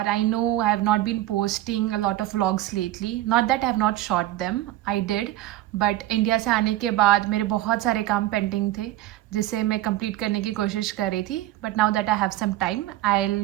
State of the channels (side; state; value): left; quieter; 15.1 dB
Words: I know I have not been posting a lot of vlogs lately, not that I have not shot them, I did, but India से आने के बाद मेरे बहुत सारे काम पेंडिंग थे जिसे मैं कंप्लीट करने की कोशिश कर रही थी। But now that I have some time I